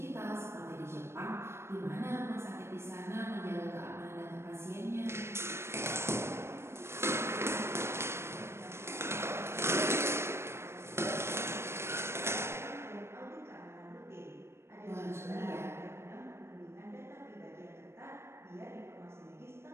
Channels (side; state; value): left; late; 0.12 ms